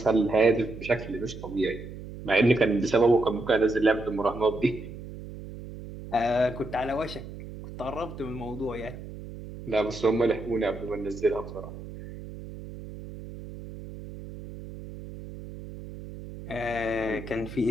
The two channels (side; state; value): right; noise; hum, 12 dB below the sound